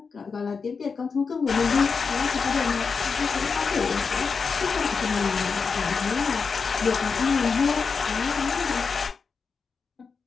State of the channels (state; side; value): quieter; right; 5.3 dB